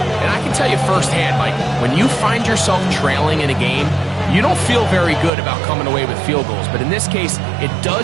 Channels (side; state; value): left; drops out; at 5.3 s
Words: And I can tell you firsthand, Mike, when you find yourself trailing in a game, you don't feel very good about coming away with field goals. But in this case, it